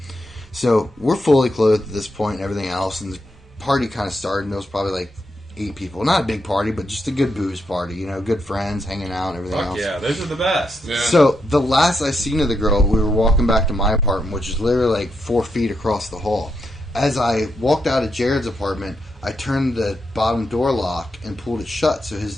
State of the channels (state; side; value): normal; both; correlation 0.82